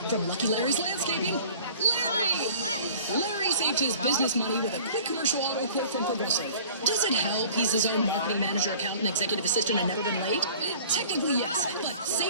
from Lucky Larry's Landscaping, Larry. Larry saved his business money with a quick commercial auto quote from Progressive. Does it help he's his own marketing manager, accountant, executive assistant, and never been late? Technically, yes, but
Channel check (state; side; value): inverted; both; correlation -0.47